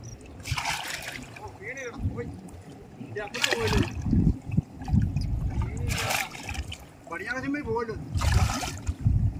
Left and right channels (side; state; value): both; identical; correlation 1.00